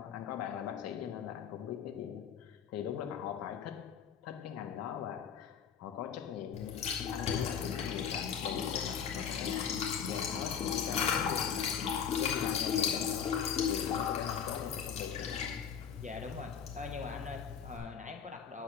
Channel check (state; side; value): quieter; right; 7.5 dB